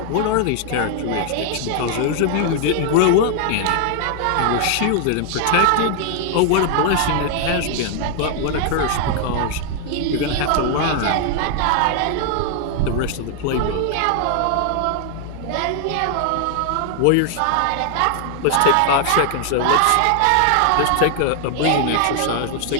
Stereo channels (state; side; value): different; both; correlation 0.00